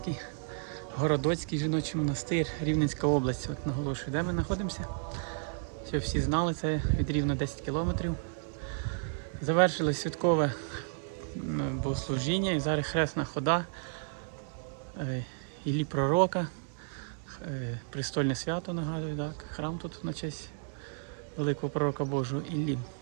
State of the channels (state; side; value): silent; left; digital silence